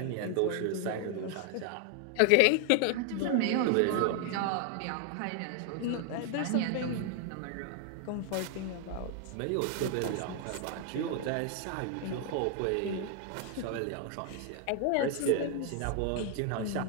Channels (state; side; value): different; both; correlation 0.00